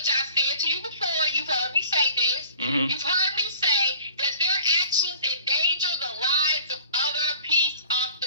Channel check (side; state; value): both; inverted; correlation -0.48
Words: I said to you before, you've heard me say this, you've heard me say that their actions endanger the lives of other peace